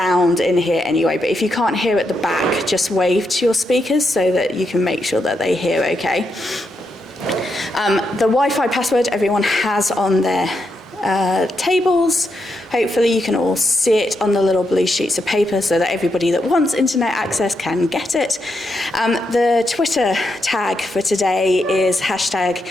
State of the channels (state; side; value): normal; both; correlation 0.82